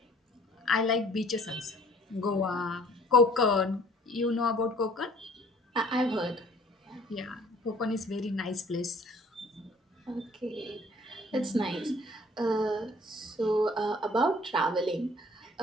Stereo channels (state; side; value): normal; both; correlation 0.55